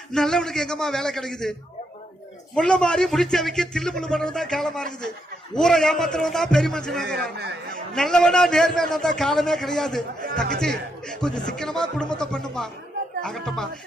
நல்லவனுக்கு எங்கம்மா வேலை கிடைக்குது? முள்ள மாறி முடிச்சவைக்கு தில்லு முள்ளு பண்றதுதான் காலமா இருக்குது. ஊரை ஏமாத்துறவன் தான் பெரிய மனுஷன். நல்லவனா நேர்மையா தான் காலமே கிடையாது. தங்கச்சி கொஞ்சம் சிக்கனமா குடும்பத்தை பண்ணுமா. ஆகட்டமா.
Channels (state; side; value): normal; both; correlation 0.79